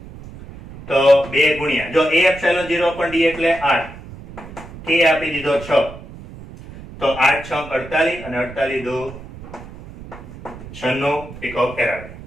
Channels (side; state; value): right; noise; rumble, 15 dB below the sound